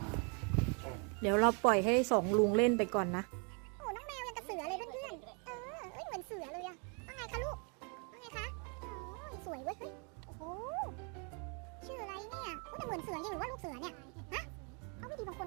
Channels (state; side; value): quieter; left; 36.2 dB